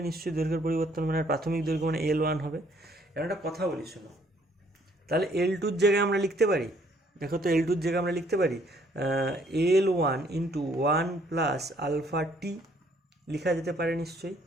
নিশ্চয়ই দৈর্ঘ্যের পরিবর্তন মানে প্রাথমিক দৈর্ঘ্য মানে L1 হবে। এর একটা কথা বলি শোনো, তাহলে L2-র জায়গায় আমরা লিখতে পারি, দেখো তো L2-র জায়গায় আমরা লিখতে পারি L1 ইন্টু 1 প্লাস আলফা টি, লেখা যেতে পারে নিশ্চয়ই।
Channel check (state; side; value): normal; both; correlation 0.64